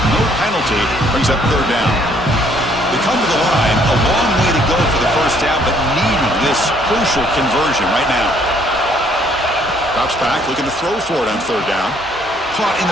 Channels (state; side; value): normal; both; correlation 0.64